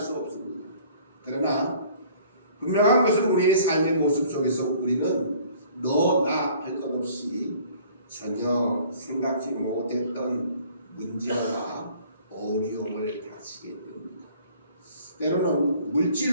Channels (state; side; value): inverted; both; correlation -0.53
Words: 없습니다. 그러나 분명한 것은 우리의 삶의 모습 속에서 우리는 너나 할 것 없이 전혀 생각지 못했던 문제와 어려움을 닥치게 됩니다. 때로는